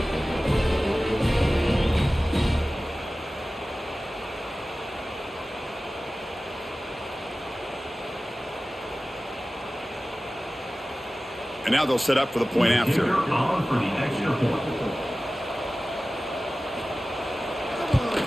And now they'll set up for the point after. On for the extra point.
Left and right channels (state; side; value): normal; both; correlation 0.96